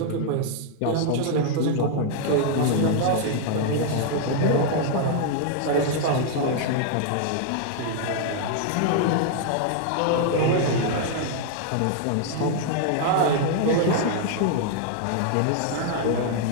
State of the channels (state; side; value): different; both; correlation 0.00